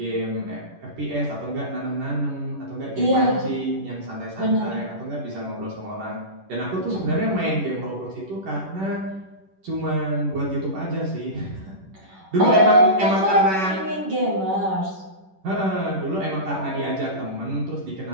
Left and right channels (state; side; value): late; left; 10 ms